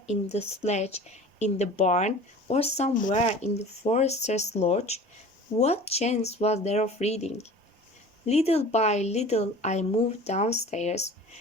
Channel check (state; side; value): normal; both; correlation 0.41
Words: in the sledge, in the barn, or somewhere in the forester's lodge. What chance was there of reading? Little by little I moved downstairs,